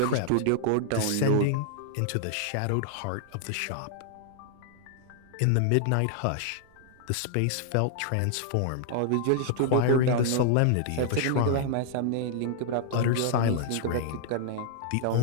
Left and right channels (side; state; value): both; different; correlation -0.01